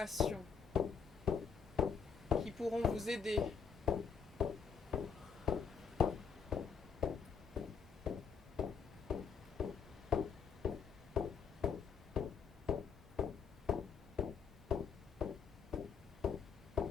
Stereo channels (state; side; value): quieter; right; 6.2 dB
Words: qui pourront vous aider